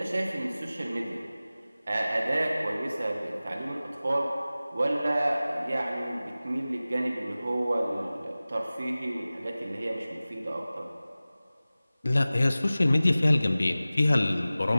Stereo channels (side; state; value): both; inverted; correlation -0.97